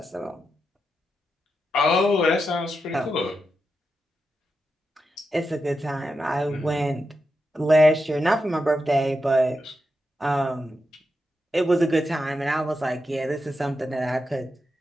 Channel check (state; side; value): normal; both; correlation 0.87